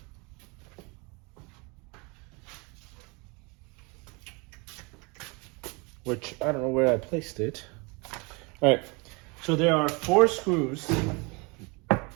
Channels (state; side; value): quieter; left; 29.2 dB